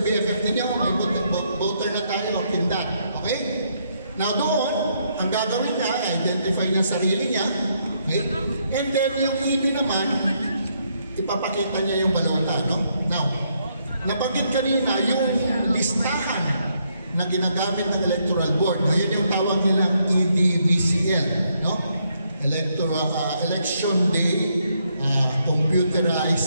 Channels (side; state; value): both; inverted; correlation -0.74